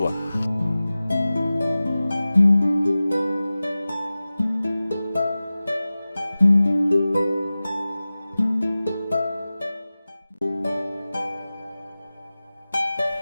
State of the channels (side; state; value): both; inverted; correlation -0.97